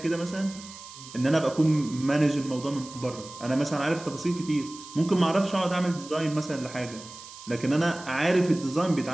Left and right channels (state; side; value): noise; right; hiss, 16 dB below the sound